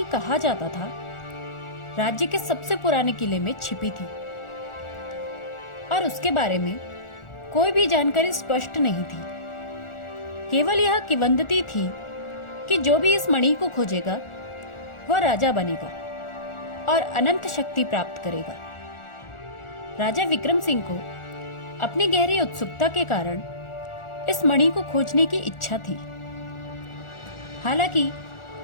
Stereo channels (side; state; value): right; late; 1.4 ms